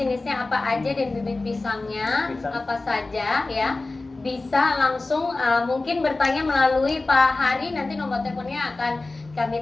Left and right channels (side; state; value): right; quieter; 3.3 dB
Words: apa aja dan bibit pisangnya apa saja ya. Bisa langsung mungkin bertanya melalui Pak Hari, nanti nomor teleponnya akan kami